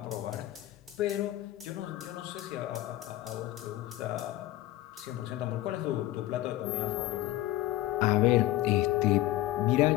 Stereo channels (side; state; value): right; quieter; 15.5 dB